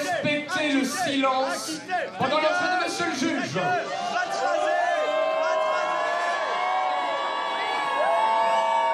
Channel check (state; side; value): identical; both; correlation 1.00